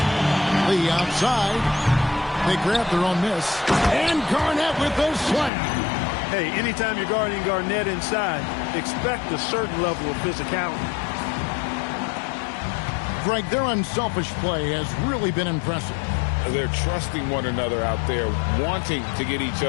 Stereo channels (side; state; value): right; drops out; at 5.5 s